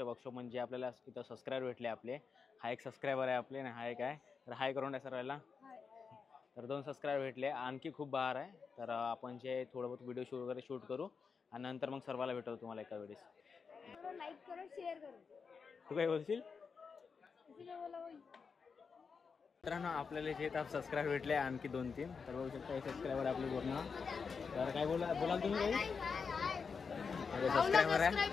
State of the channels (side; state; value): right; quieter; 5.5 dB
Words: वर्कशॉप म्हणजे आपल्याला इथं सबस्क्राईबर भेटले आपले. हा एक सबस्क्रायबर आहे आपले आणि हा एक आहे तर हाय करून द्या सर्वांना. तर 2 सबस्क्राईबर भेटले. आणखी खूप बहार आहे. तर आपण जे थोडं बहुत व्हिडिओ वगैरे शूट करू आणि नंतर मग सर्वाला भेटवतो तुम्हाला एका वेळेस. लाईक करो शेअर करो. तू काय बोलशील? किती बोला बाई. मित्रांनो आपल्याला जे सबस्क्राईबर भेटले आणखी 2-3. तर बघू शकता हे सबस्क्राईबर आपले पूर्ण. तर काय बोलाल तुम्ही काही? सबस्क्राईबर आहे,